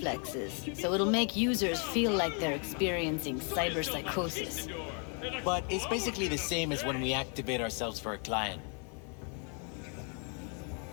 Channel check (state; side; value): quieter; right; 39.7 dB